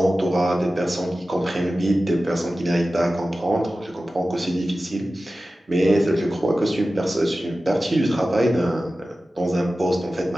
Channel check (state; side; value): normal; both; correlation 0.95